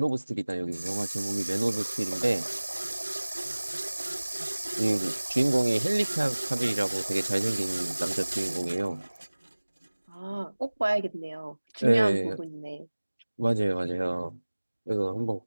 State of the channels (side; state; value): both; inverted; correlation -1.00